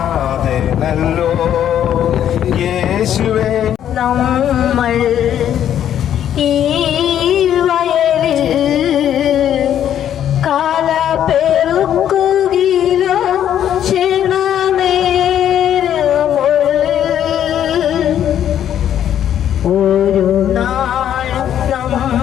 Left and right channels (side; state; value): right; quieter; 10.3 dB